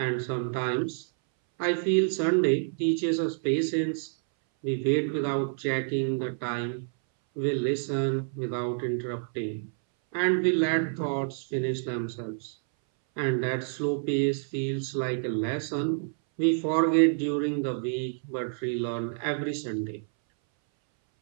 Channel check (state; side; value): silent; left; 59 dB below the other